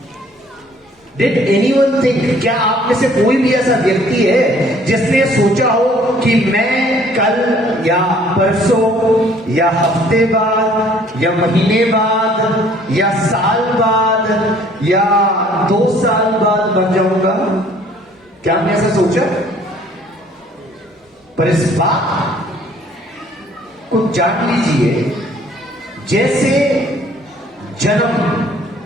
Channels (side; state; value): both; normal; correlation 0.58